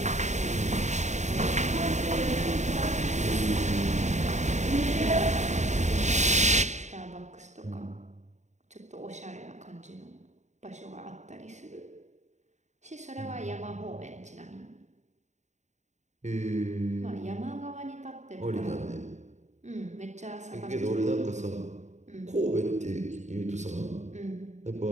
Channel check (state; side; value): late; left; 0.34 ms